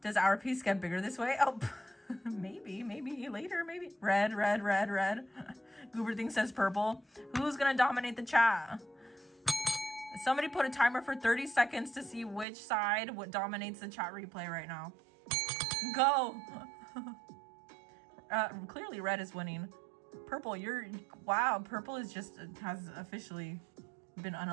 Does our piece get bigger this way? Oh, maybe later, maybe. Red. Goober thing says purple. Who's gonna dominate the chat? Somebody put a timer for 30 seconds to see which side what dominates the chat replay right now. Go. Clearly red is winning. Purple, wow, purple is has officially been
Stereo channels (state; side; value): drops out; left; at 12.5 s